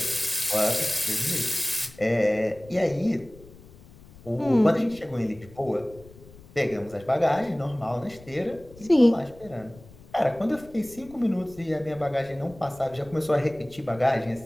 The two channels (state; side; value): noise; left; rumble, 22 dB below the sound